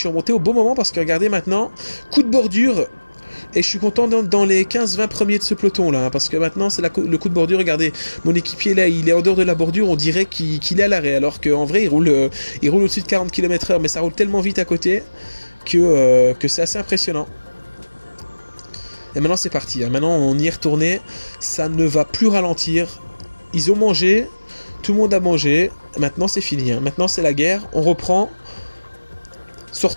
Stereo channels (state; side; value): inverted; both; correlation -1.00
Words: remonté au bon moment parce que regardez maintenant, coup de bordure. Et je suis content dans les 15-20 premiers de ce peloton là, hein, parce que maintenant c'est le coup de bordure. Regardez, mon équipier là, il est en dehors de la bordure, on dirait qu'il est à l'arrêt, alors qu'en vrai il roule au-dessus de 40 km/h, mais ça roule tellement vite à côté que c'est assez impressionnant. Et maintenant c'est parti, hein. Maintenant on y est retourné, ça ne va plus ralentir. Ils ont mangé. Tout le monde a mangé, maintenant c'est fini, hein. Maintenant c'est la guerre, on reprend,